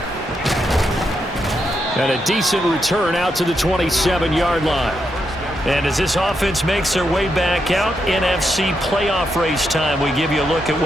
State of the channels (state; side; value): normal; both; correlation 0.82